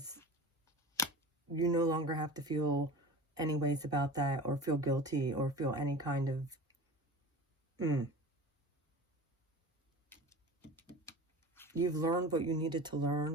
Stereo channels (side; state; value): both; normal; correlation 0.35